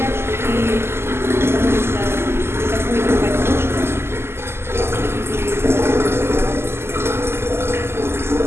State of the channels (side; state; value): left; late; 0.12 ms